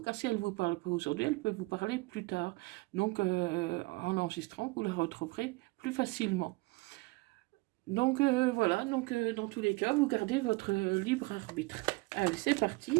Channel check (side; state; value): left; quieter; 24.3 dB